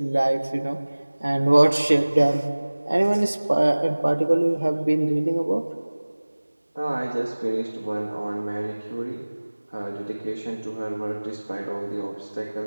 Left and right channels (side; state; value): both; inverted; correlation -1.00